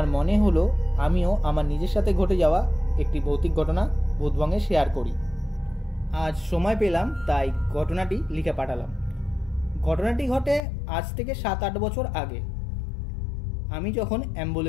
মনে হলো আমিও আমার নিজের সাথে ঘটে যাওয়া একটি ভৌতিক ঘটনা ভূতবংয়ে শেয়ার করি। আজ সময় পেলাম তাই ঘটনাটি লিখে পাঠালাম। ঘটনাটি ঘটে আজ থেকে 7-8 বছর আগে। আমি যখন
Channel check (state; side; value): drops out; right; at 10.6 s